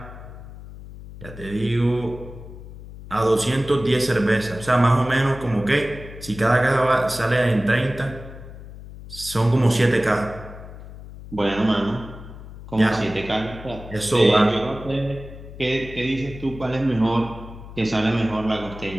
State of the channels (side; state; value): left; noise; hum, 14 dB below the sound